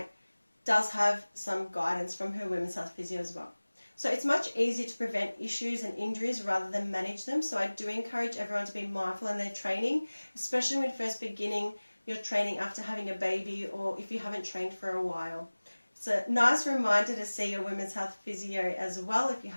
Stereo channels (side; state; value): both; inverted; correlation -1.00